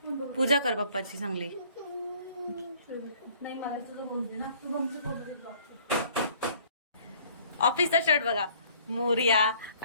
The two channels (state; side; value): inverted; both; correlation -0.57